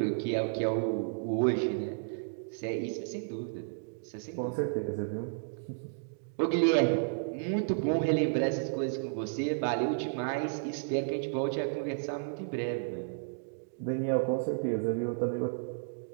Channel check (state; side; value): silent; left; digital silence